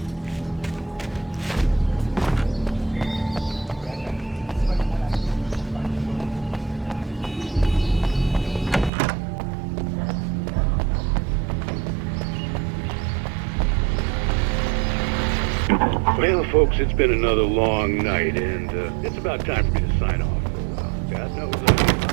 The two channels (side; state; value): left; drops out; at 8.9 s